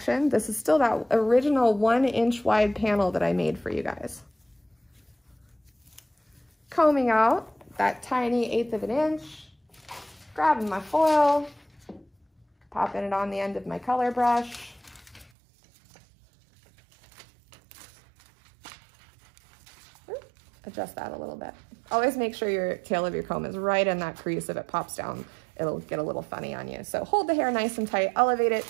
This is still that original 1 inch wide panel that I made for you guys. Combing out that tiny 1/8 of an inch, grabbing my foil, popping it on the end of my color brush. Adjust that a little bit. Always make sure your tail of your comb is right in that crease. If it pops down, it'll get a little funny on you. So hold the hair nice and tight, elevate it,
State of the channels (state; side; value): drops out; left; at 15.3 s